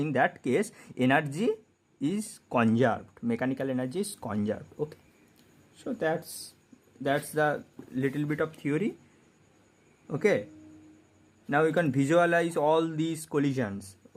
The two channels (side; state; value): both; identical; correlation 1.00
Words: that case energy is conserved, mechanical energy is conserved, okay. So that's the little bit of theory, okay. Now you can visualize all these collisions,